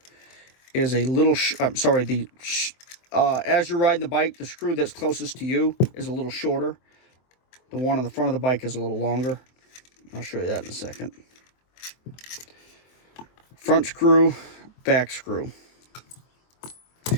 is a little, as you're riding the bike, the screw that's closest to you is a little shorter. The one on the front of the bike is a little longer. I'll show you that in a second. Front screw, back screw.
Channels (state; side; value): late; right; 23 ms